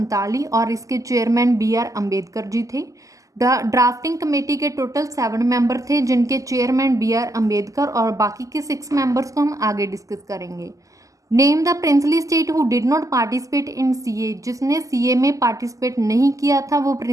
और इसके चेयरमैन BR अम्बेडकर जी थे। ड्राफ्टिंग कमेटी के टोटल 7 मेंबर थे जिनके चेयरमैन BR अम्बेडकर और बाकी के 6 मेंबर्स को हम आगे डिस्कस करेंगे। Name the princely state who did not participate in CA, जिसने CA में पार्टिसिपेट नहीं किया था वो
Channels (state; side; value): late; left; 0.16 ms